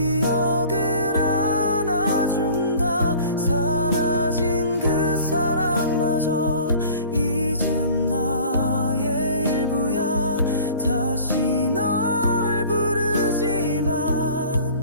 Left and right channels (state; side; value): inverted; both; correlation -0.46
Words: 안아준다. 사라진 그 사랑마저 이젠 나의 일부야. 다시 널 부르지만